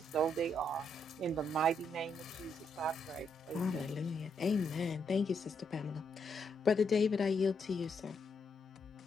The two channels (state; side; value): normal; both; correlation 0.77